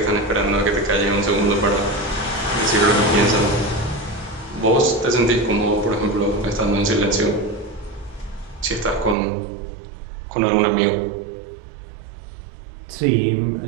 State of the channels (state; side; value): drops out; left; at 9.2 s